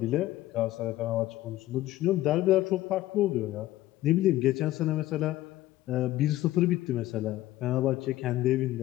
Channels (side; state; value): right; quieter; 15.5 dB